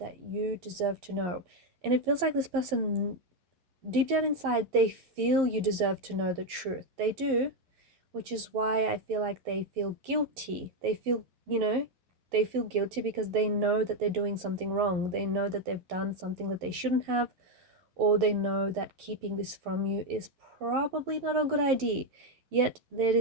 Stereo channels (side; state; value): left; late; 11 ms